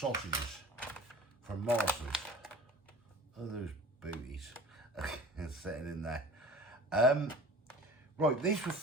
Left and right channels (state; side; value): normal; both; correlation 0.41